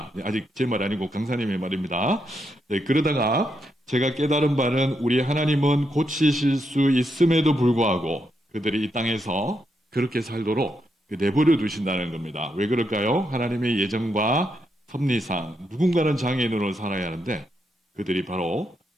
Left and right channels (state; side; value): normal; both; correlation 0.81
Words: 아직 제 말 아니고 강사님의 말입니다. 네, 그러다가 제가 깨달은 바는 우리 하나님은 고치실 수 있음에도 불구하고 그들이 이 땅에서 그렇게 살도록 내버려 두신다는 겁니다. 왜 그럴까요? 하나님의 예정과 섭리상 누군가는 장애인으로 살아야 하는데 그들이 바로